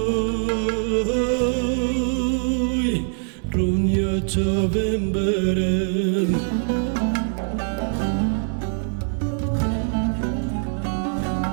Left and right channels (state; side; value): silent; left; 63 dB below the other